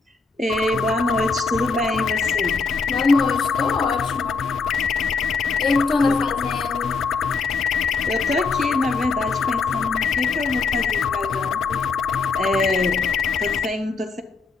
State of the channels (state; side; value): quieter; right; 4.5 dB